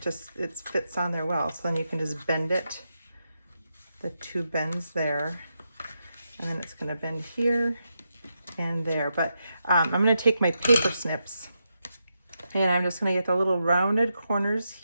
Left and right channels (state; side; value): inverted; both; correlation -0.85